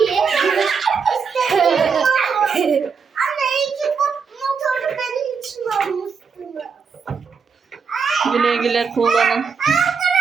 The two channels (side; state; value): left; quieter; 5.8 dB